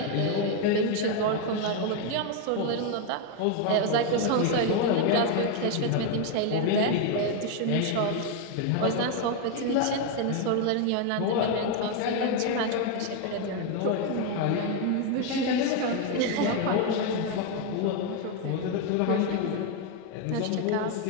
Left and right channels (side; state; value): both; different; correlation 0.01